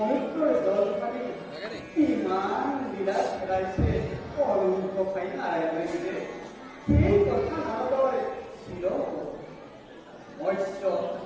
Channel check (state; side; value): identical; both; correlation 1.00